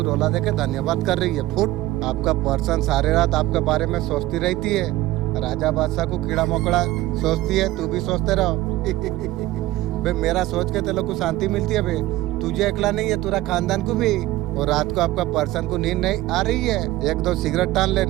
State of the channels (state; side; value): quieter; left; 16.7 dB